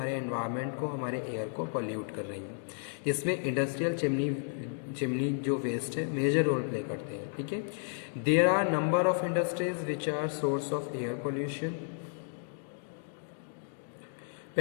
एनवायरनमेंट को, हमारे एयर को पॉल्यूट कर रही हैं। इसमें इंडस्ट्रियल चिमनी जो वेस्ट है मेजर रोल प्ले करते हैं। ठीक है, there are number of industries which are source of air pollution.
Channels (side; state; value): right; silent; 56 dB below the other